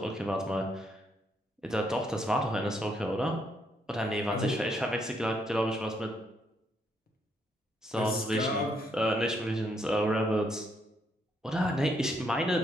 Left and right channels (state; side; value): normal; both; correlation 0.74